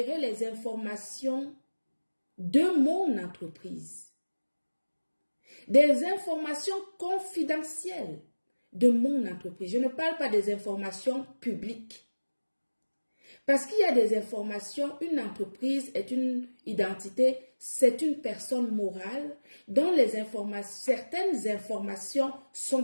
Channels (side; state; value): both; inverted; correlation -1.00